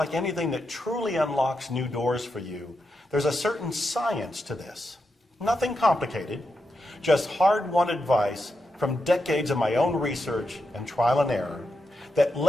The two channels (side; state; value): both; normal; correlation 0.86